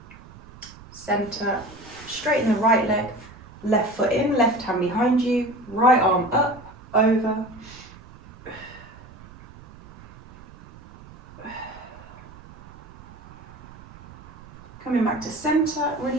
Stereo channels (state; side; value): noise; right; rumble, 19 dB below the sound